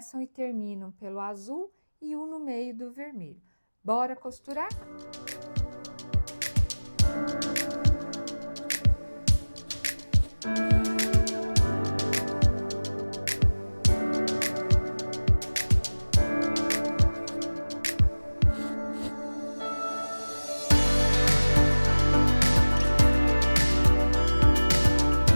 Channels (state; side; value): inverted; both; correlation -1.00